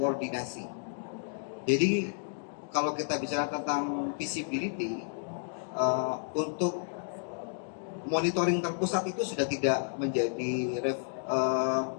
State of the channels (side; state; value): right; silent; digital silence